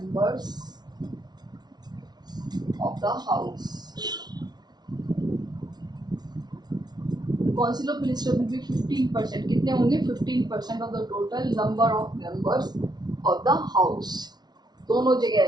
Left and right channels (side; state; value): left; late; 0.19 ms